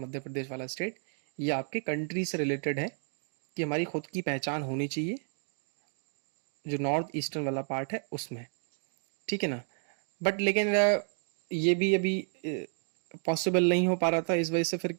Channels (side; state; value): left; silent; 57 dB below the other